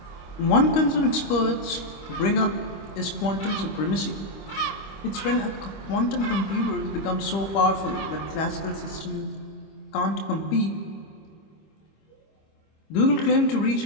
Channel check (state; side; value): late; right; 25 ms